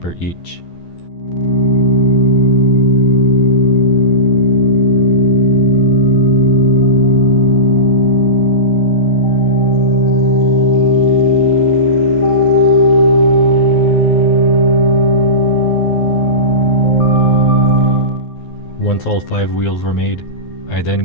each. Once all 5 wheels were made, I then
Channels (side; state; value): right; late; 12 ms